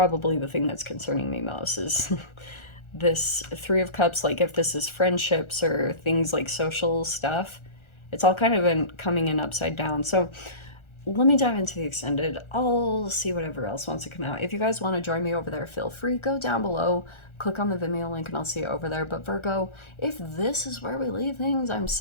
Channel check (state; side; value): late; right; 1.4 ms